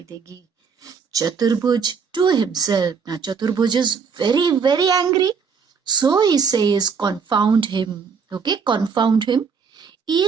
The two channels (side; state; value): left; quieter; 5.9 dB